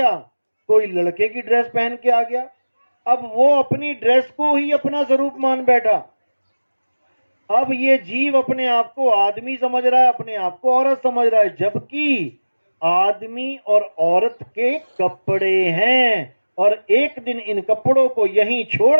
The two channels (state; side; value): inverted; both; correlation -1.00